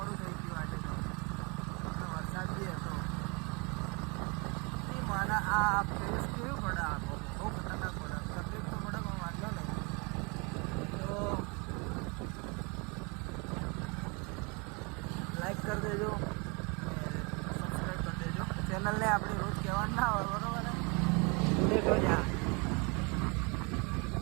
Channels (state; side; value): quieter; left; 30.8 dB